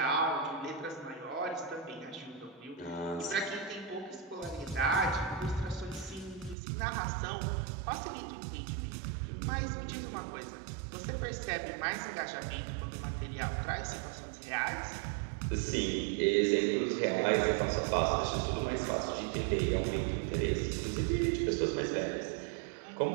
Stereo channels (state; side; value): drops out; left; at 6.6 s